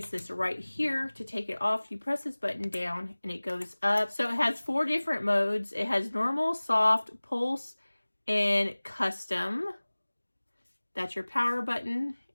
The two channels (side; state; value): both; inverted; correlation -1.00